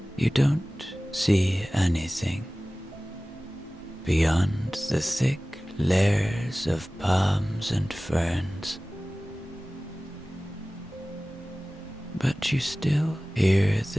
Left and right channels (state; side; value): normal; both; correlation 0.97